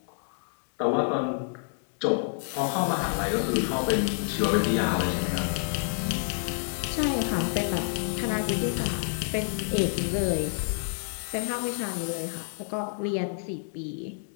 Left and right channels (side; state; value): right; silent; digital silence